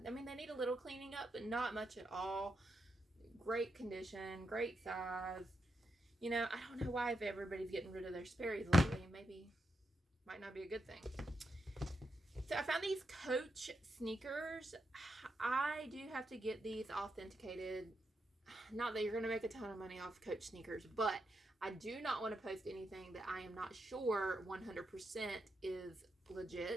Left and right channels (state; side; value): normal; both; correlation 0.84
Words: mean, they need a little cleaning up, but not much at all. Great condition, great size. You know, I don't know why if everybody's getting rid of their Sperry's lately. Maybe might not be a good thing. So I found these Coach sneakers. I do have to get these authenticated. Not that you're going to make a ton of money off Coach sneakers, but I do not want to post anything that I am not sure 100% is